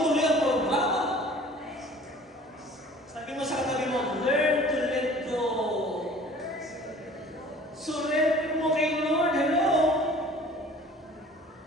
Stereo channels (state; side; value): normal; both; correlation 0.48